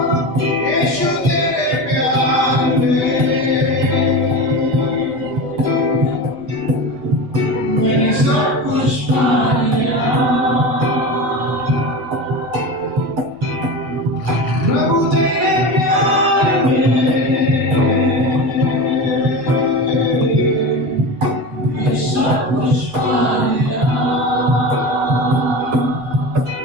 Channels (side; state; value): left; late; 7.8 ms